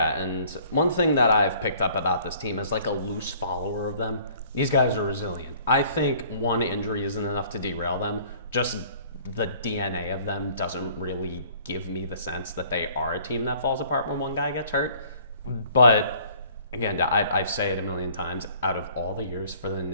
and one thing that I've picked up about this team as like a loose follower of them, these guys are resilient. I think one injury isn't enough to derail them. Just the DNA of them doesn't really give me the sense that they are a team that falls apart when one guy gets hurt. But again, I say it a million times, out of all the years for the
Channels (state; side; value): inverted; both; correlation -0.55